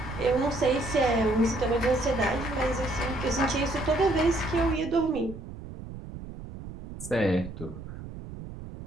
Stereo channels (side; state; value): right; noise; rumble, 12 dB below the sound